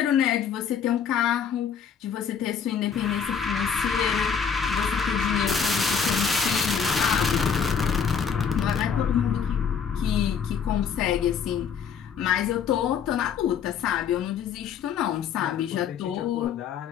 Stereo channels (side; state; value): right; quieter; 7.1 dB